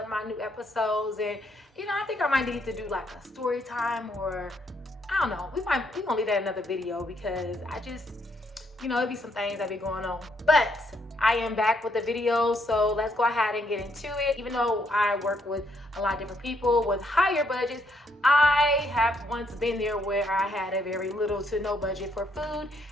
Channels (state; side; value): normal; both; correlation 0.73